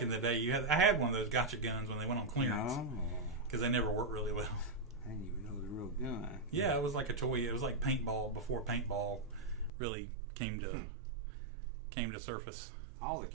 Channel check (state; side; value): drops out; left; at 9.7 s